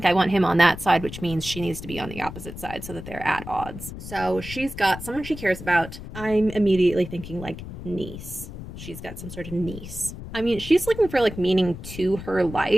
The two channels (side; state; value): left; noise; rumble, 11 dB below the sound